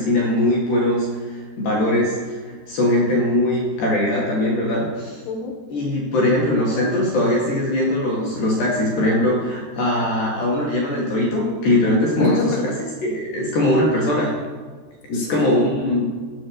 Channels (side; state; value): right; late; 13 ms